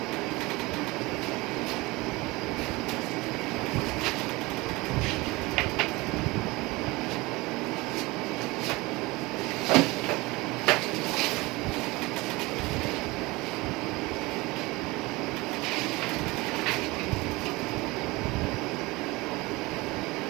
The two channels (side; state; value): left; quieter; 22.4 dB